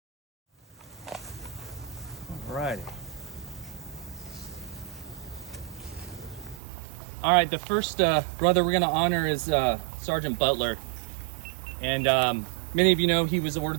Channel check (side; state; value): left; drops out; at 6.6 s